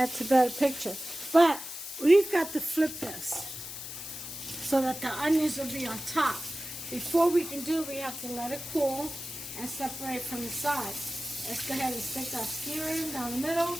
a better picture. But we've got to flip this so that the onions will be on top. Before we can do it, we have to let it cool and separate from the sides. Let's go ahead and stick our skewer in down the middle.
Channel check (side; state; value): left; noise; hiss, 9 dB below the sound